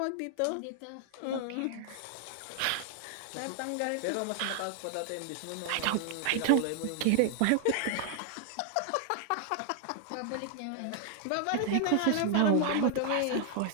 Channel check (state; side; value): different; both; correlation 0.00